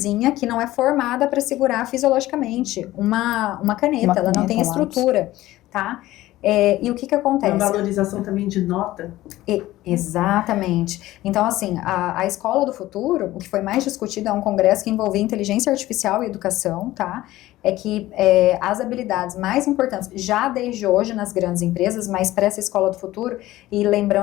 que não é formada para segurar fisiologicamente uma caneta, ela não tem estrutura, tá? E o que acontece? A valorização também de nota. Exatamente. Então, assim, a escola do futuro, o que foi mais discutido é um congresso que envolvia inteligência artificial e educação, tá? É que as habilidades mais importantes, já desde hoje nas grandes empresas, mas para essa escola do futuro, e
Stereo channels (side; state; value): right; quieter; 16.2 dB